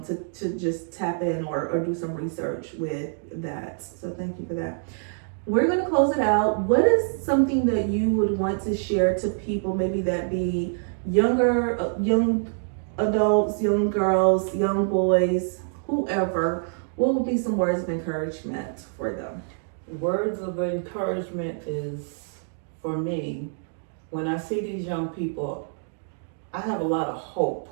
just tap in or do some research with that. So thank you for that. We're going to close it out. What is something that you would want to share to people, maybe that be young adults, young girls, young boys, whoever? What would be some words of encouragement for them? Words of encouragement is, for me, when I see these young people, I have a lot of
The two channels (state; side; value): silent; left; digital silence